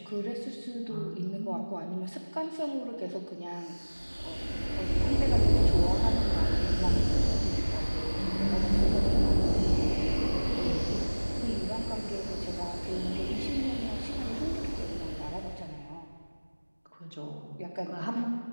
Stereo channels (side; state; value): both; inverted; correlation -1.00